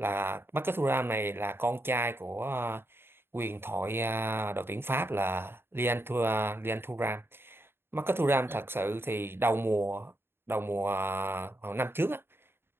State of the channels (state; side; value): late; left; 0.11 ms